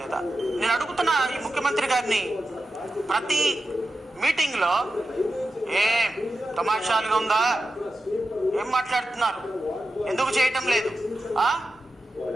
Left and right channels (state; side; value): normal; both; correlation 0.91